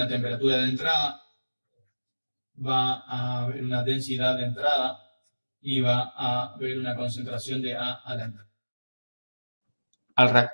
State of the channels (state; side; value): inverted; both; correlation -1.00